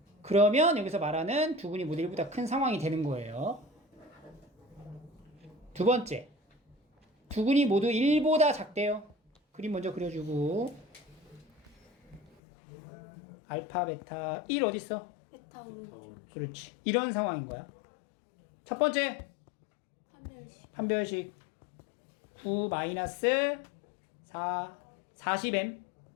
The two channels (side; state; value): right; drops out; at 12.4 s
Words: 그러면 여기서 말하는 두근이 모두 1보다 큰 상황이 되는 거예요. 두 번째, 두근이 모두 1보다 작대요. 그림 먼저 그려주고 알파, 베타, 1 어딨어? 베타 오른쪽. 그렇지. 이런 상황인 거야. 첫 번째, 판별식. 판별식 9 마이너스 4, 40m